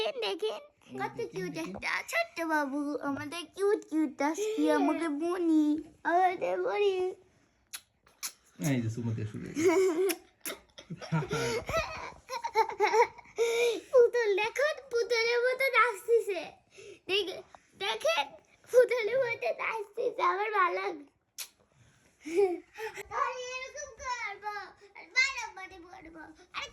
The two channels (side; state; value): both; identical; correlation 1.00